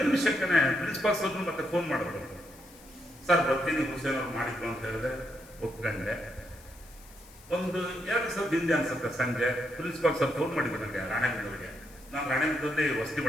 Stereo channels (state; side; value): noise; left; hiss, 23 dB below the sound